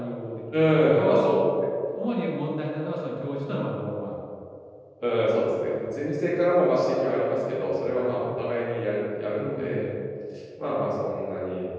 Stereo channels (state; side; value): identical; both; correlation 1.00